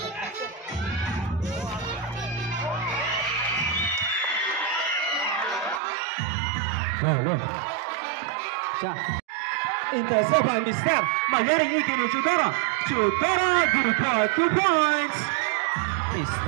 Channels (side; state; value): left; drops out; at 5.8 s